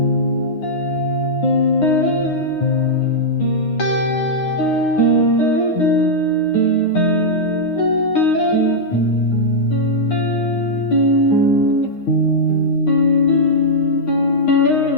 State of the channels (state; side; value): late; right; 9.7 ms